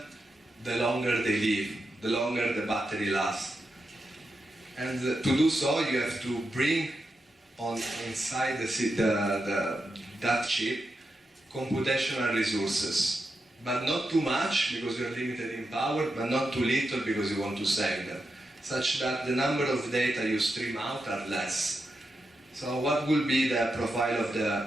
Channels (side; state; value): both; normal; correlation 0.87